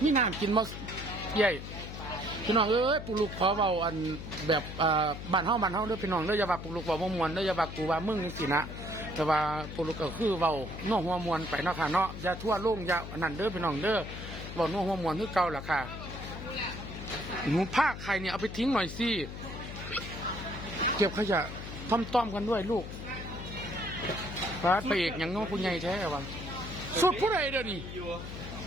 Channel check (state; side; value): noise; left; hum, 9 dB below the sound